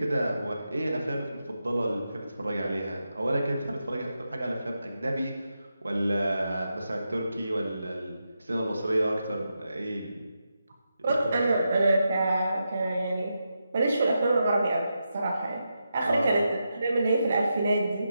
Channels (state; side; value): inverted; both; correlation -0.87